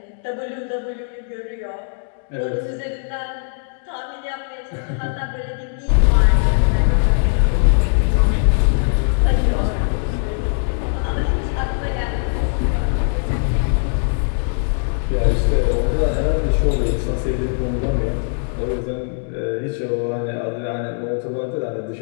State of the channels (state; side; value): silent; right; 63 dB below the other